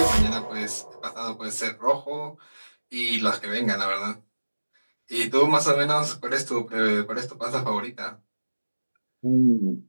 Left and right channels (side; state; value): both; inverted; correlation -1.00